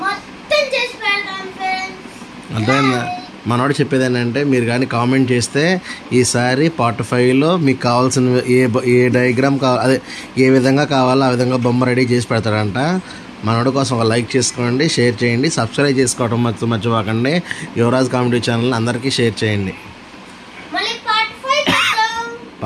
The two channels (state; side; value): identical; both; correlation 1.00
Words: మొత్తం చేసి పెడతాను ఫ్రెండ్స్. అర్థమైందా? మనోడు చెప్పేది ఏంటంటే, మీరు కానీ కామెంట్ చేస్తే ఈసారి పార్ట్ 5లో మీకు కావాల్సిన ఏ డయాగ్రామ్ అదే ఏ విధంగా కావాలో ఆ విధంగా బొమ్మ రెడీ చేసి పెడతాడంట. మనోడి కోసం ఒక లైక్ చేసుకోండి, షేర్ చేయండి, సబ్స్క్రైబ్ చేసుకోవడం మర్చిపోకండి. యువరాజ్ కామెడీ ఛానల్ అందరికీ షేర్ చేయండి. మళ్ళీ పార్ట్ 5